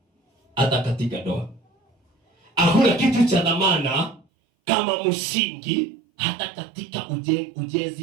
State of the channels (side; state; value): left; drops out; at 4.2 s